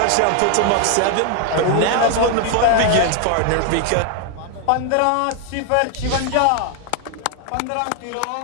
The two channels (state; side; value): different; both; correlation 0.00